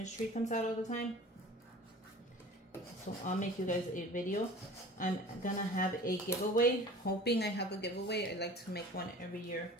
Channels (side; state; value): both; normal; correlation 0.43